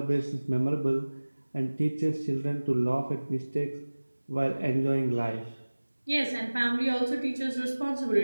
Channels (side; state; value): both; inverted; correlation -1.00